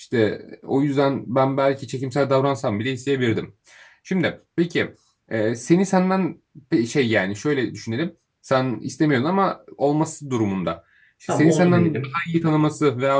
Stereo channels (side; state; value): both; identical; correlation 1.00